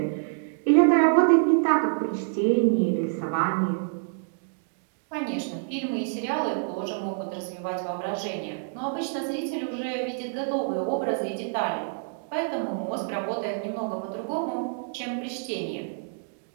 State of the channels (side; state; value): left; silent; digital silence